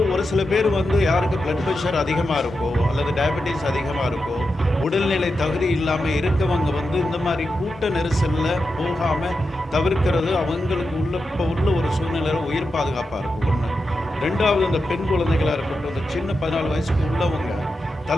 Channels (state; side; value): normal; both; correlation 0.88